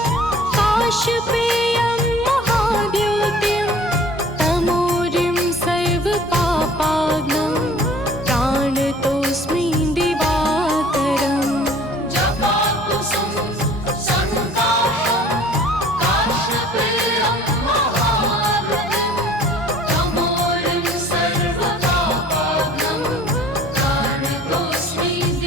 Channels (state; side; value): normal; both; correlation 0.50